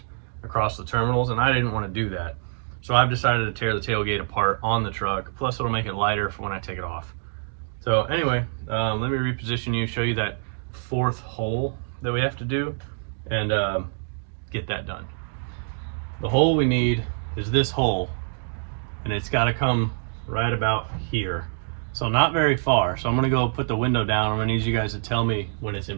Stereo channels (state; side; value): silent; left; digital silence